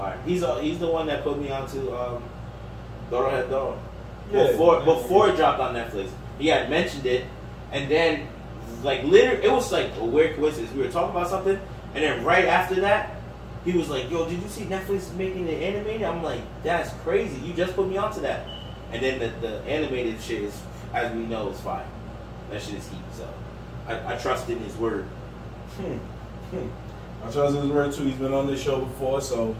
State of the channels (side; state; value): both; identical; correlation 1.00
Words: He's the one that put me onto Doro Doro. Yeah. Before it dropped on Netflix, he had mentioned it, and then like literally, it was like a weird coincidence. We were talking about something, and then right after that, he was like, "Yo, did you see Netflix is making it animated?" I'm like, "That's crazy! You just put me onto that." And then the animated shit is, as we know, is fire. That shit is heat. So I trust in his word. I trust in his word too. He's been on this show before, so